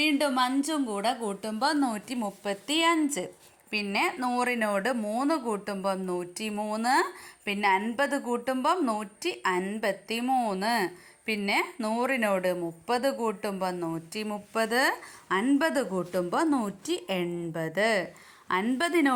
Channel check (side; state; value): both; identical; correlation 1.00